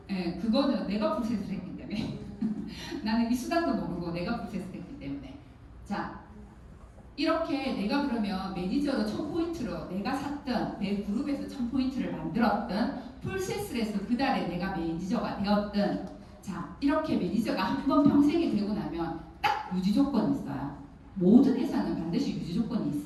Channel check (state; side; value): identical; both; correlation 1.00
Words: 네, 그거는 내가 풀셋을 했기 때문에 나는 이 수단도 모르고 내가 풀셋을 했기 때문에 자 이렇게 내가 그러면 매니저로 1000포인트로 내가 샀던 내 그룹에서 1000포인트를 만들었던 풀셋을 해서 그 달에 내가 매니저가 되었던 자 이렇게 매니저가 한 번 평생이 되고 나면 딱 유지 조건이 있어요. 모든 회사는 반드시 유지 조건이